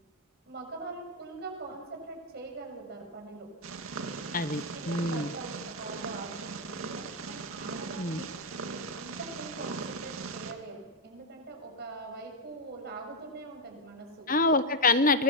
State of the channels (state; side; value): normal; both; correlation 0.02